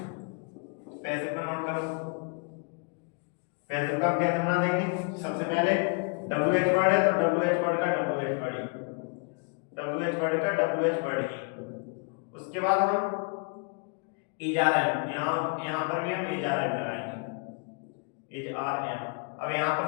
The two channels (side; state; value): right; quieter; 37.2 dB